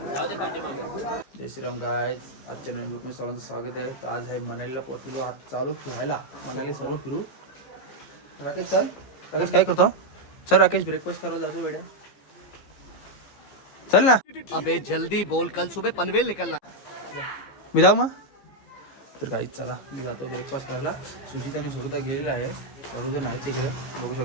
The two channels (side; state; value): right; late; 15 ms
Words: जाऊ दे पाठीमागे. जय श्रीराम गाइस, आजच्या नवीन व्हिडिओ मध्ये सर्वांचं स्वागत आहे. तर आज आहे मनालीला पोहोचलो. आज चालू फिरायला मनाली सर्व फिरू. राकेश चल. राकेश काय करतो? चल राकेश ब्रेकफास्ट करायला जातो वेड्या. चल ना. अबे जल्दी बोल, कल सुबह पनवेल निकलना. मी जाऊ मग. तर गाईस चला मी जातो ब्रेकफास्ट करायला. सुजित आणि सुरता गेलेला आहे. सर्वजण आहेत तिकडे बघू